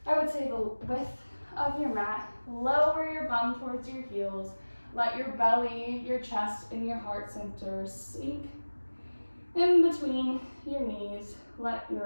I would say, the width of your mat. Lower your bum towards your heels. Let your belly, your chest, and your heart center sink in between your knees. Let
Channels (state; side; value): inverted; both; correlation -1.00